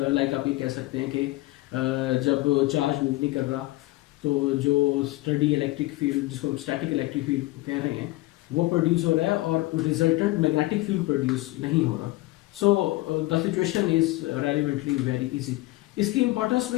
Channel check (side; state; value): right; quieter; 19.5 dB